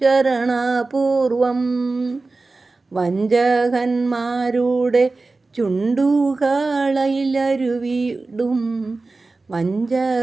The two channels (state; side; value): quieter; left; 3.6 dB